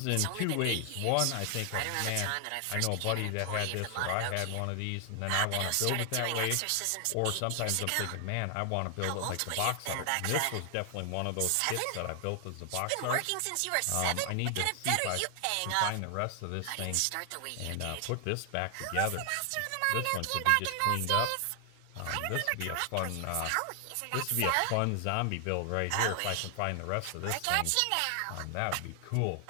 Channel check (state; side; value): different; both; correlation 0.00